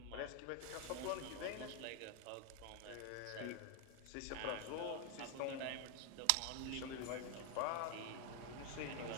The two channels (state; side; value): different; both; correlation 0.01